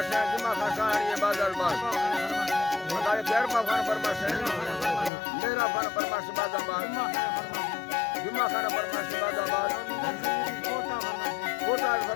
है जुमा खान शाहरी बाजार बाग बताए गैरपा खान फरमाश है मेरा खान फरमाश बाजार बाग जुमा खान फरमाश बाजार बाग कोटा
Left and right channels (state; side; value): drops out; right; at 5.1 s